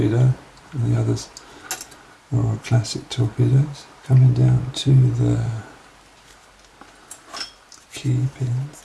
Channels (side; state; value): both; identical; correlation 1.00